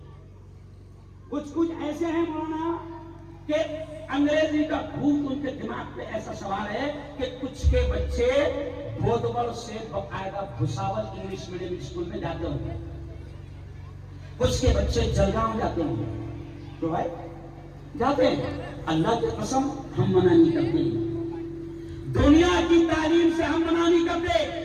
کچھ ایسے ہیں مولانا کہ انگریزی کا بھوت ان کے دماغ پہ ایسا سوال ہے کہ کچھ کے بچے بودور سے باقاعدہ بھساول انگلش میڈیم اسکول میں جاتے ہوں گے، کچھ کے بچے جلگاؤں جاتے ہوں گے، تو بھائی جاتے ہیں۔ اللہ کی قسم ہم منع نہیں کرتے، دنیا کی تعلیم سے ہم منع نہیں کرتے۔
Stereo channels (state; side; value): identical; both; correlation 1.00